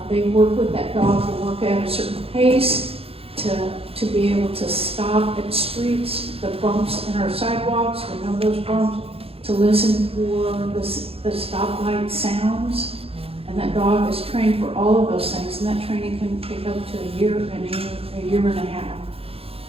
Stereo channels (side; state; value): left; late; 0.28 ms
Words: they work with that dog to work at a certain pace, to be able to stop at streets, the bumps in our sidewalks, to know those bumps, to listen for the stoplight sounds. And that dog is trained for all of those things, and that training can take up to a year and a half.